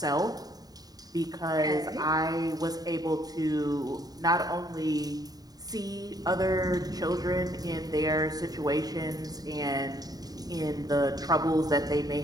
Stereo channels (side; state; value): left; late; 0.18 ms